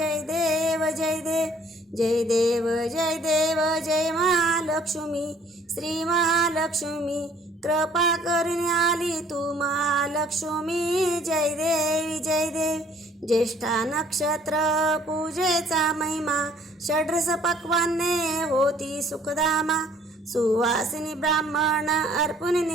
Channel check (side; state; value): both; normal; correlation 0.58